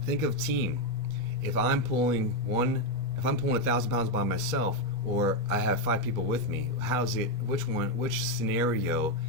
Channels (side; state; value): both; normal; correlation 0.05